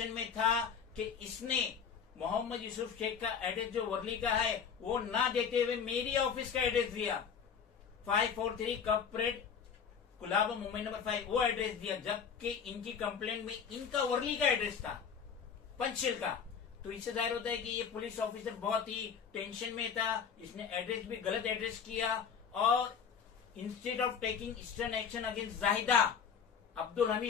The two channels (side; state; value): right; quieter; 6.9 dB